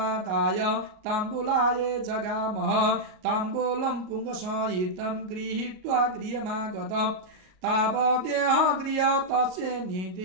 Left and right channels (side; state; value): left; late; 38 ms